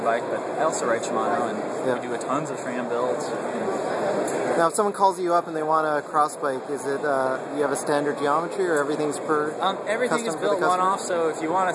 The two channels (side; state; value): both; identical; correlation 1.00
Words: bike, but I also ride Shimano, and we do tons of tram builds. Now, if someone calls you up and they want a cross bike, is it you have a standard geometry, or everything's everything is built one-off. So if you want a